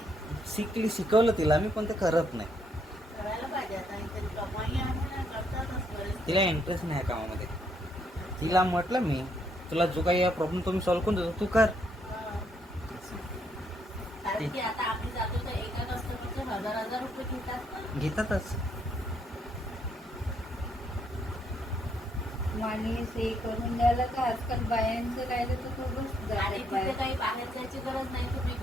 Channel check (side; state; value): both; normal; correlation 0.73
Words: शिकवलं तिला मी, पण ते करत नाही. करायला पाहिजे आता, इथे कमाई आहे ना, करतातच बरेच. तिला इंटरेस्ट नाही या कामामध्ये. तिला म्हटलं मी, तुला जो काही प्रॉब्लेम तो मी सॉल्व्ह करून देतो, तू कर. कारण की आता आम्ही जातो तर एका कस्टमरचे 1000 रुपये घेतात ना. घेतातच. माणूस हे करून द्यायला का आजकाल बायांचं राहिलं तर खूपच आणि जातात तिथे बाया. काही बाहेर जायची गरज नाही, तुम्ही